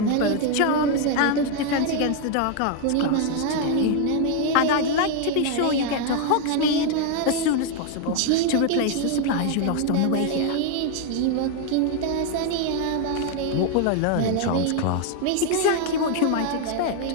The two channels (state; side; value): different; both; correlation 0.00